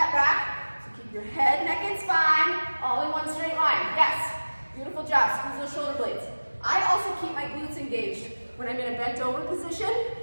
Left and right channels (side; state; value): both; inverted; correlation -1.00